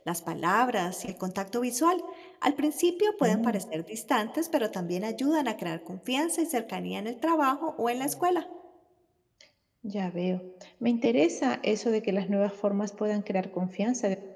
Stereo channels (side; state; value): both; identical; correlation 1.00